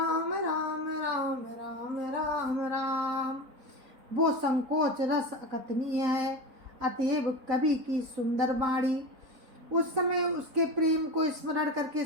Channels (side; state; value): left; late; 4.0 ms